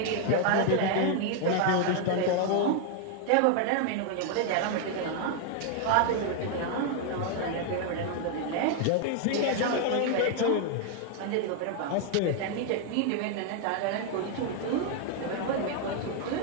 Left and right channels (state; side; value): different; both; correlation 0.00